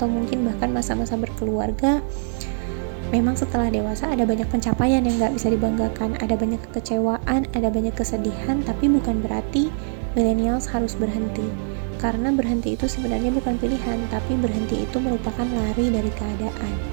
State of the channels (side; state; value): left; silent; digital silence